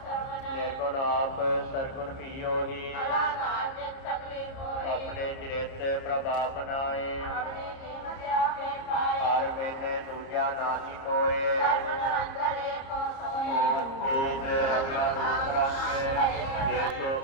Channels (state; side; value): late; right; 30 ms